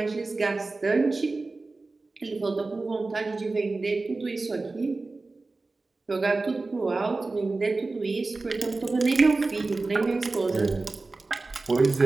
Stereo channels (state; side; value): quieter; left; 3.5 dB